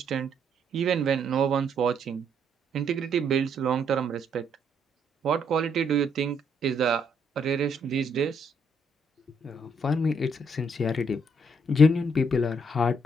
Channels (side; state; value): both; normal; correlation 0.71